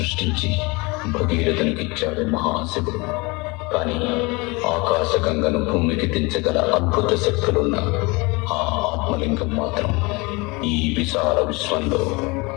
భగీరథునికిచ్చాడు మహాశివుడు. కానీ ఆకాశగంగను భూమికి దించగల అద్భుత శక్తులున్న ఆ ఆత్మలింగం మాత్రం ఈ విశాల విశ్వంలో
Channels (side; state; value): right; quieter; 26.3 dB